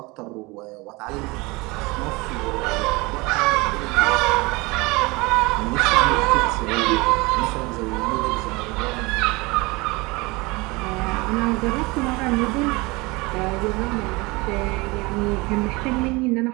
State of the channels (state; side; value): quieter; left; 24.3 dB